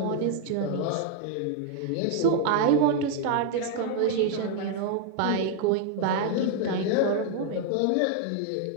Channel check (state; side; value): different; both; correlation 0.00